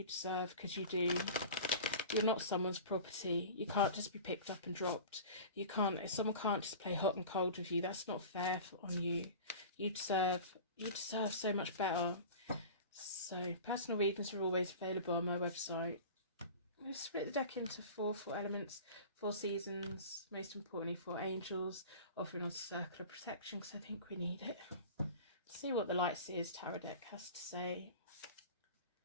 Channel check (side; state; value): both; inverted; correlation -0.36